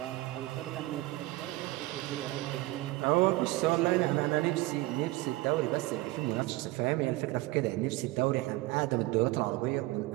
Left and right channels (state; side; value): quieter; left; 19.5 dB